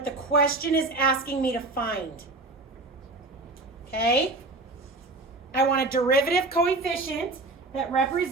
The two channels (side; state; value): left; quieter; 3.1 dB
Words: the question is asking me to find. Okay? I want a derivative coefficient that